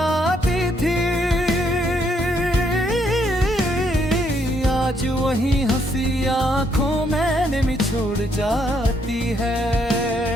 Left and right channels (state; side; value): normal; both; correlation 0.72